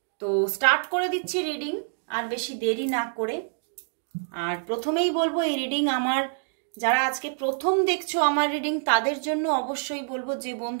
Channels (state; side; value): silent; left; digital silence